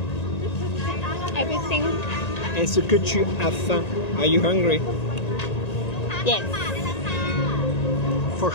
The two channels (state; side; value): late; right; 1.9 ms